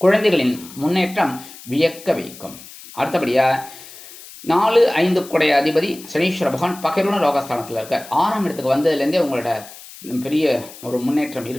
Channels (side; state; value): left; noise; hiss, 17 dB below the sound